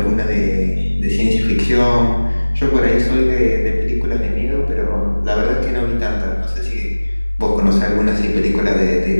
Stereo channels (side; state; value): both; inverted; correlation -1.00